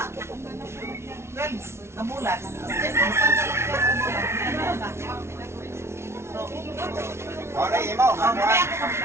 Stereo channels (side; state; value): left; late; 0.13 ms